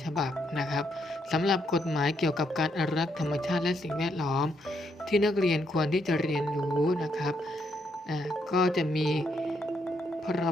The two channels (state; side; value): normal; both; correlation 0.76